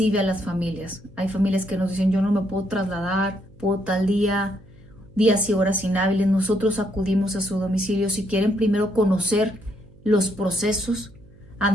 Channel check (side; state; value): right; noise; hum, 25 dB below the sound